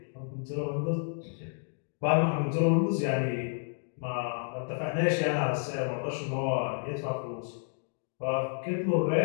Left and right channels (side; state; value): right; silent; 56 dB below the other